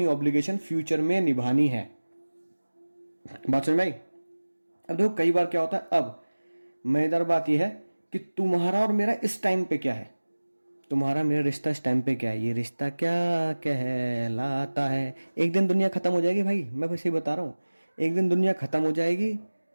ऑब्लिगेशन फ्यूचर में निभानी है। बात समझ में आई? अब देखो कई बार क्या होता है, अब मजेदार बात यह है कि तुम्हारा और मेरा इस टाइम पे क्या है, तुम्हारा मेरा रिश्ता इस टाइम पे क्या है, ये रिश्ता क्या कहलाता है। एक दिन दुनिया खत्म हो जाएगी भाई, मैं बस ये बता रहा हूं, एक दिन दुनिया खत्म हो जाएगी।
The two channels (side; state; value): both; inverted; correlation -1.00